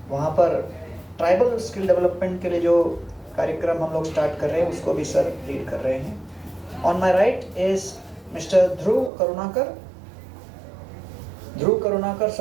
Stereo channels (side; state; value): left; drops out; at 9.1 s